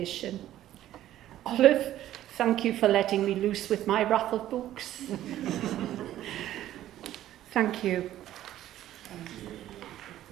Olive, thank you for letting me loose with my raffle books. Thank you.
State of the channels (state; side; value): quieter; left; 13.1 dB